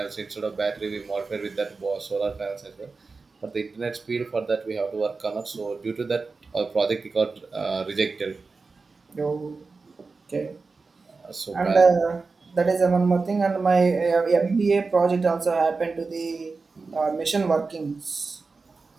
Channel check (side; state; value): left; quieter; 4.2 dB